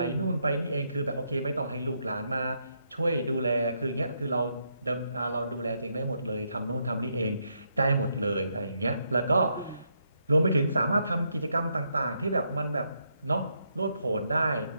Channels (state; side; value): inverted; both; correlation -0.78